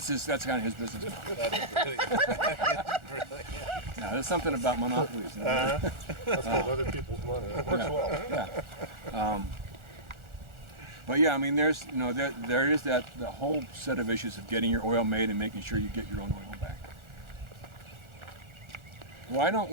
kind of his business model. That's brilliant. Yeah, there's something about monopolies. That's called other people's money. It works well. Yeah. But yeah, I mean, there is the whole set of issues of getting your oil made and making sure you get your own oil back. Why don't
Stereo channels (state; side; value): late; left; 1.4 ms